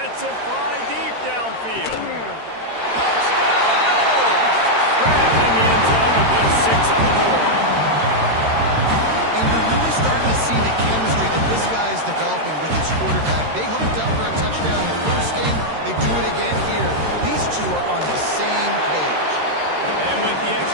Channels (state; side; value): late; left; 13 ms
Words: it fly deep downfield. Touchdown, no! Grabbed in the end zone to put 6 on the board. And you're really starting to see the chemistry that this guy is developing with his quarterback. They hooked up for a touchdown in the first game. They do it again here. These two are on the same page. And with the